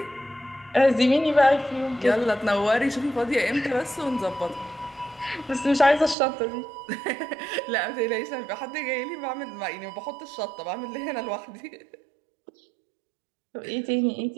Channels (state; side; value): drops out; left; at 6.2 s